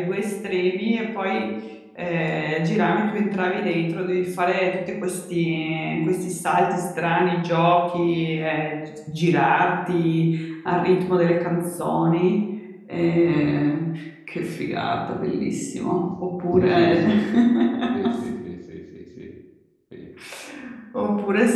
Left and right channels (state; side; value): identical; both; correlation 1.00